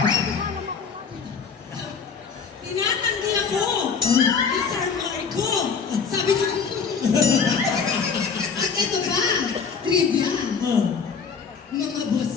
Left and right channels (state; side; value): quieter; right; 5.9 dB